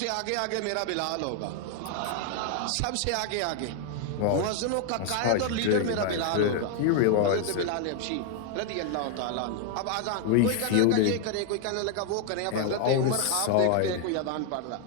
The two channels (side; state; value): both; different; correlation 0.00